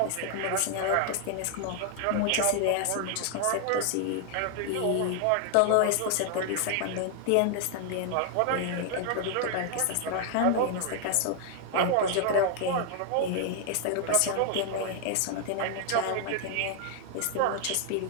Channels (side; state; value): both; different; correlation 0.00